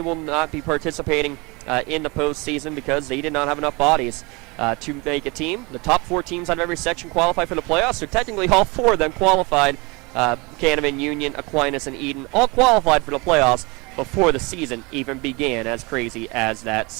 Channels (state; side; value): quieter; left; 26.7 dB